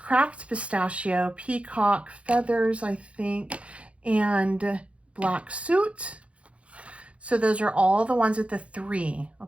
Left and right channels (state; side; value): late; left; 0.062 ms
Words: Pistachio, Peacock Feathers, I think, and Black Suit. So those are all the ones with the 3,